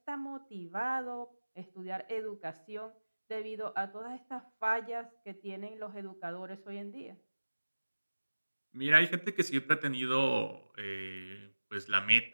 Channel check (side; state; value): both; inverted; correlation -1.00